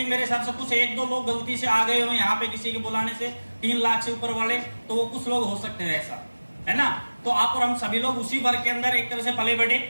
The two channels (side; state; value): both; inverted; correlation -1.00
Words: मेरे हिसाब से कुछ 1-2 लोग गलती से आ गए हो यहाँ पे किसी के बुलाने से 3 लाख से ऊपर वाले, तो वो कुछ लोग हो सकते हैं ऐसा, है ना। तो आप और हम सभी लोग उसी वर्ग के अंदर एक तरह से पले बढ़े।